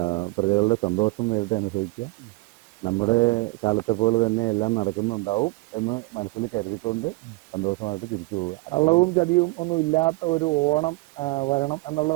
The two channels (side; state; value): left; quieter; 23.7 dB